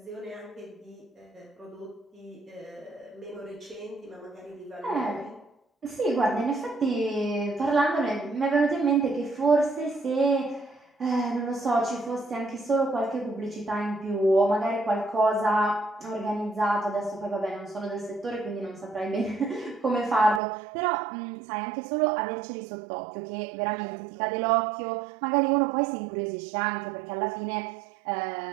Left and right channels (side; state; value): left; drops out; at 20.4 s